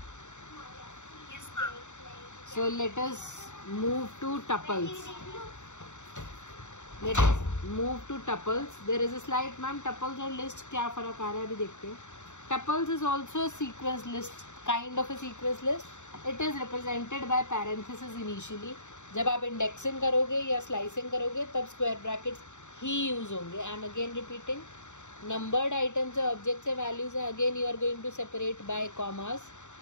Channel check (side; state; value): right; late; 0.84 ms